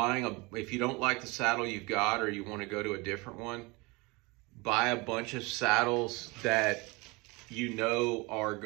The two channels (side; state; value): left; quieter; 25.4 dB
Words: you don't like the saddle you've got, or you want to go to a different one, buy a bunch of saddles that you know are